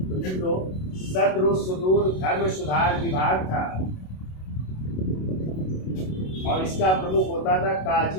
तो सद्र सुदूर धर्म सुधार विभाग था, और इसका प्रमुख होता था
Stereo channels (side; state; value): right; late; 27 ms